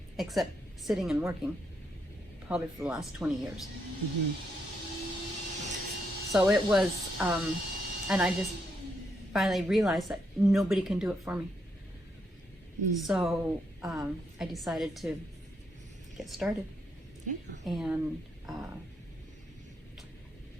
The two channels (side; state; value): both; normal; correlation 0.78